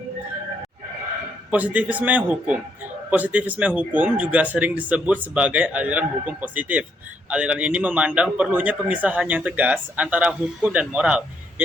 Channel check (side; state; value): both; normal; correlation 0.73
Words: Positivisme hukum. Positivisme hukum juga sering disebut sebagai aliran hukum positif. Aliran ini memandang perlunya pemisahan yang tegas antara hukum dan moral,